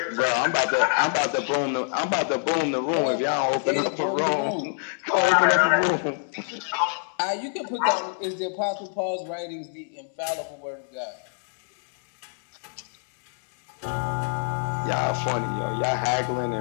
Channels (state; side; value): silent; right; 61 dB below the other